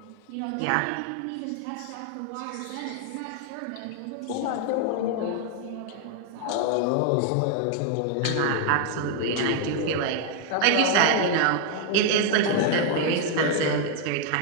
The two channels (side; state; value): both; different; correlation 0.00